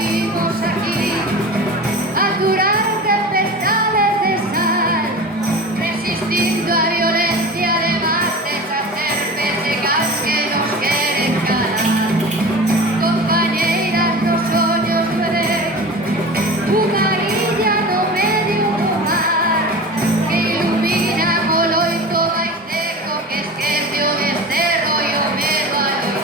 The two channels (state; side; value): normal; both; correlation 0.33